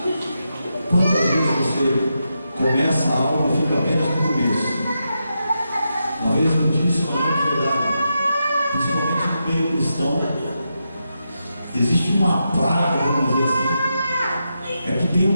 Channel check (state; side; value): inverted; both; correlation -0.86